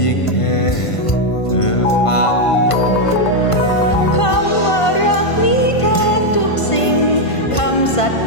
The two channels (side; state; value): right; late; 1.5 ms